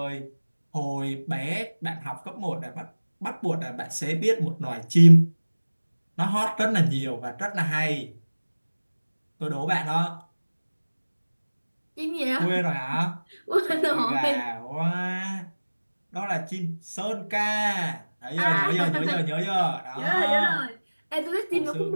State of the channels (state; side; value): inverted; both; correlation -1.00